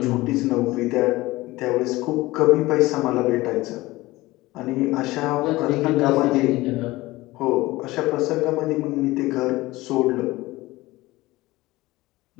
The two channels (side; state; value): right; quieter; 19.3 dB